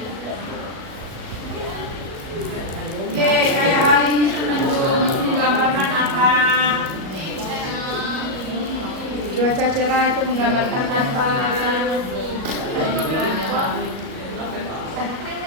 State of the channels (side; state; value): left; late; 37 ms